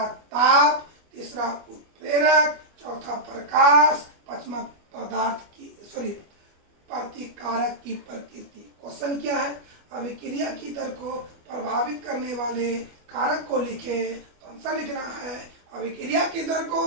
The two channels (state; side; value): late; left; 25 ms